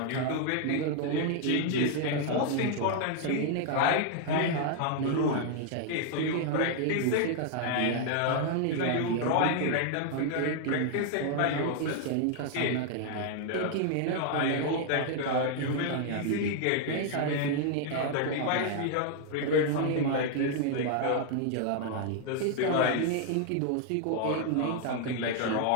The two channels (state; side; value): different; both; correlation 0.00